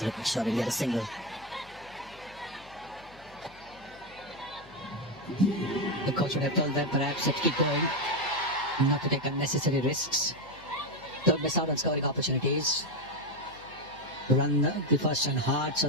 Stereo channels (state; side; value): noise; left; hum, 23 dB below the sound